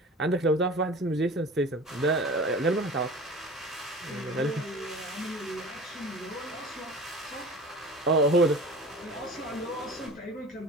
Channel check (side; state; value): both; normal; correlation 0.39